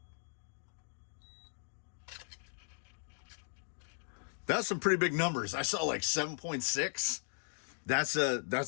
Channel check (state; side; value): silent; right; digital silence